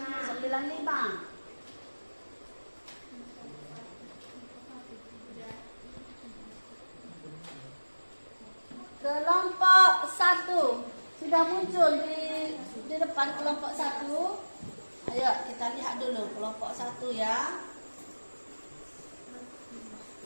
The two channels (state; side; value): inverted; both; correlation -1.00